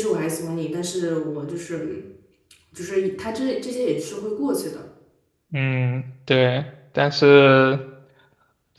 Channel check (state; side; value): identical; both; correlation 1.00